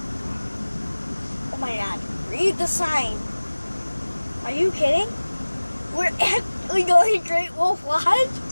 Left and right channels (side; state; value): both; inverted; correlation -1.00